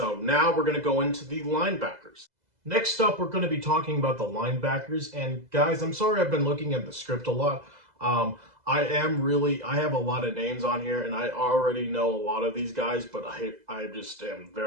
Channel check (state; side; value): late; left; 2.0 ms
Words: now we're going to go into the linebackers. Next up, we're going to be talking about the linebackers. And guys, I'm sorry I've been looking at the script a lot. I have a lot of names on here, and I already know a lot of these guys, but I just am